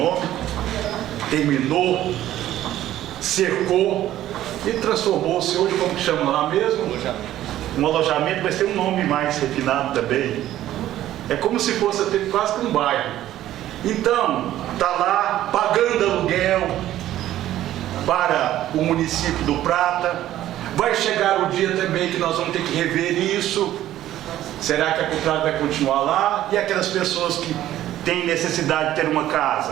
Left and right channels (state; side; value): quieter; left; 13.2 dB